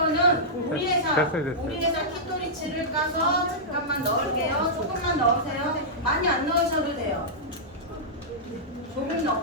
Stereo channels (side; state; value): both; normal; correlation -0.12